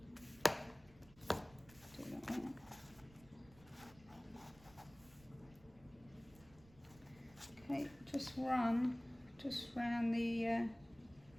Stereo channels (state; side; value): noise; right; rumble, 24 dB below the sound